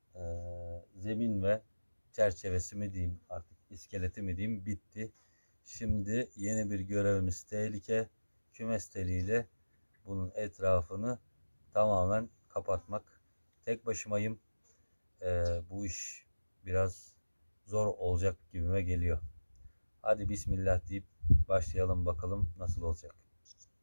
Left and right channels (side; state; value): both; inverted; correlation -1.00